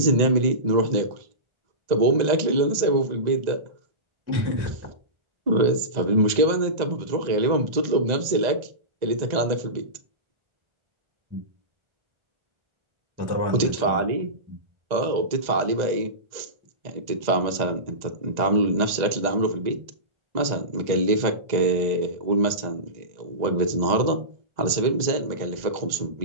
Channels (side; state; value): left; late; 1.9 ms